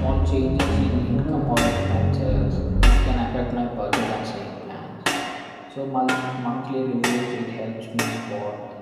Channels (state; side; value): identical; both; correlation 1.00